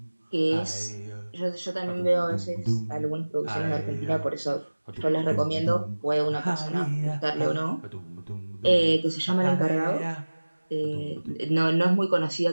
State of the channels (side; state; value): both; inverted; correlation -1.00